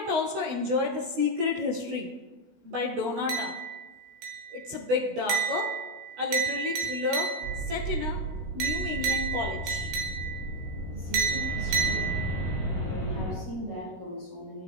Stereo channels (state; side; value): late; left; 16 ms